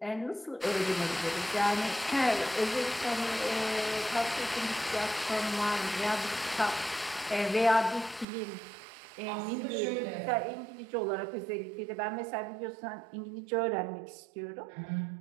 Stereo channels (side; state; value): left; drops out; at 8.2 s